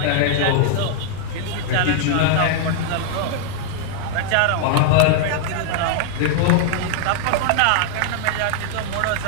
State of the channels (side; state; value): both; different; correlation -0.01